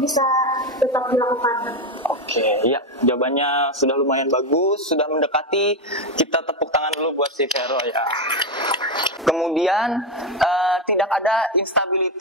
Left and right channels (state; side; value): normal; both; correlation 0.09